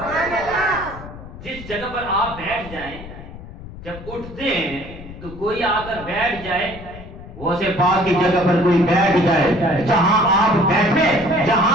جس جگہ پر آپ بیٹھ جائیں جب اٹھتے ہیں تو کوئی آ کر بیٹھ جائے، وہ سے پاک کی جگہ پر کوئی بیٹھ جائے، جہاں آپ بیٹھے،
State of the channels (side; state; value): left; noise; rumble, 14 dB below the sound